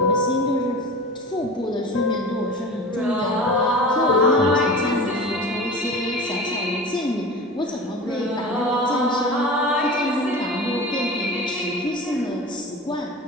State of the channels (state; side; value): normal; both; correlation 0.34